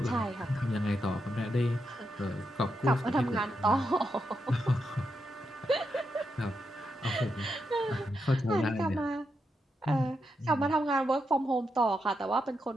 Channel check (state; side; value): normal; both; correlation 0.84